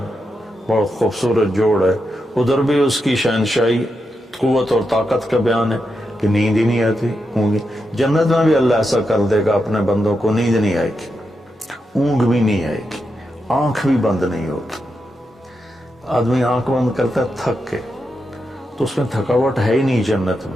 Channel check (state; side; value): normal; both; correlation 0.86